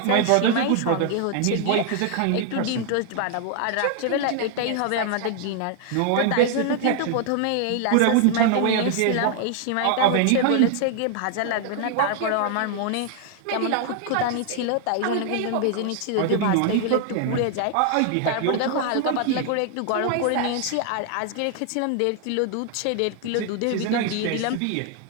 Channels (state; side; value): different; both; correlation 0.00